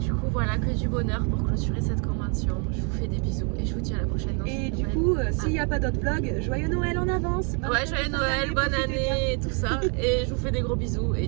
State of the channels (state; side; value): quieter; left; 37.6 dB